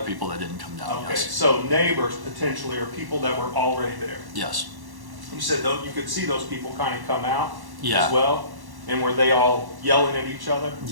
that didn't come down, Okay, yes. so neighbors potentially, or people that were already there? Yes. You said though, you could see those people kind of come out Yeah. as well? And were they all yelling at each other?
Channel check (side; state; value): left; late; 1.1 ms